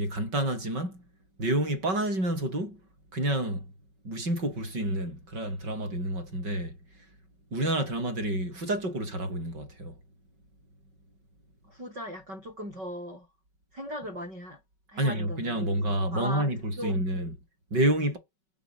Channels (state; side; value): late; left; 5.3 ms